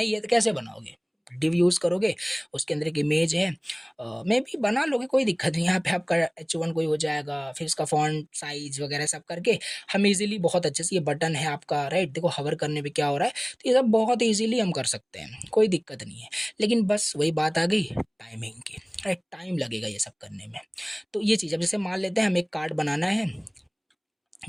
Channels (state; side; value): identical; both; correlation 1.00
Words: है तो कैसे बनाओगे? डिव यूज़ करोगे, उसके अंदर एक इमेज है, मे भी बना लोगे, कोई दिक्कत नहीं। यहाँ पे आपका H1 कोई हो जाएगा, फिर इसका फॉन्ट साइज वगैरह सब करके हम इजीली बहुत अच्छे से, ये बटन है आपका, राइट? देखो हवर करने पे क्या हो रहा है, तो ये सब बहुत इजीली हम कर सकते हैं, कोई दिक्कत नहीं है। लेकिन बस वही बात आ गई टाइमिंग की, राइट? टाइम लगेगा ये सब करने में। तो ये चीज़, अब जैसे मान लेते हैं हमें एक कार्ड बनाना है,